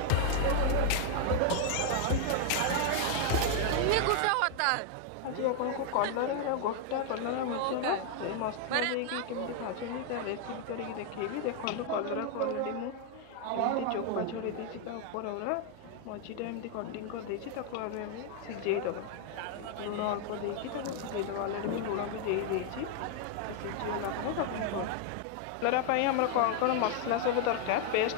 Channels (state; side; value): different; both; correlation 0.00